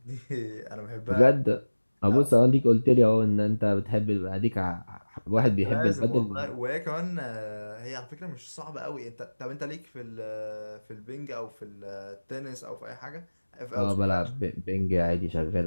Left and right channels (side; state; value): both; inverted; correlation -1.00